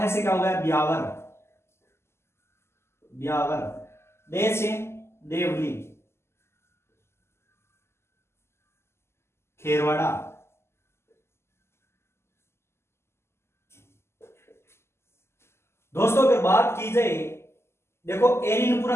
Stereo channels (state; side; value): late; right; 0.12 ms